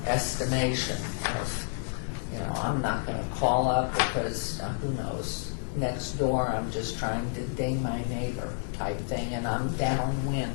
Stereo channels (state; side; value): silent; right; digital silence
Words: estimation of, I'm not going to call up because who knows, next door I'm just trying to ding my neighbor type thing and I'm downwind.